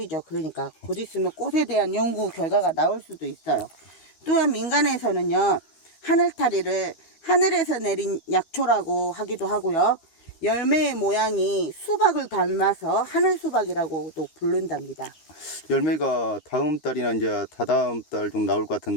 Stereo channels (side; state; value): right; late; 13 ms